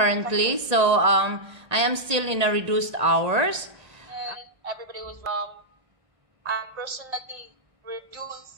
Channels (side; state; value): left; late; 1.8 ms